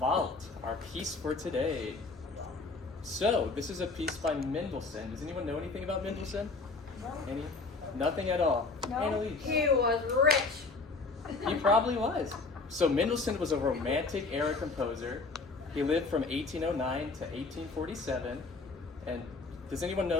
our piece for today. So, this is a piece by Mendelssohn. Does anyone know anything about Mendelssohn? Any? Nothing at all. No. Annalise. He was rich. He probably was. So Mendelssohn was a Romantic era composer. He lived from 1809 to 1847. And does anyone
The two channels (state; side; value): quieter; right; 3.9 dB